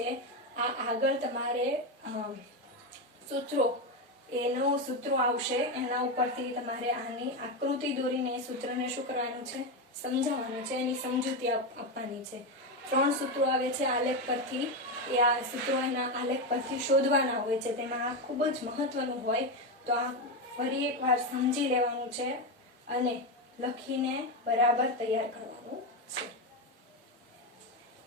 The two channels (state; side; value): normal; both; correlation 0.11